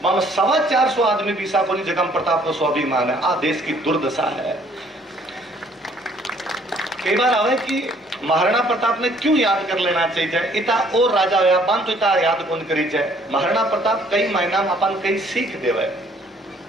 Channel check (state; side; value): normal; both; correlation 0.61